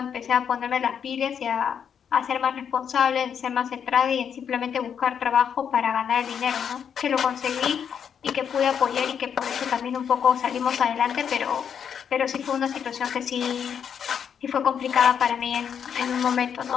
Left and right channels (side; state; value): right; quieter; 7.8 dB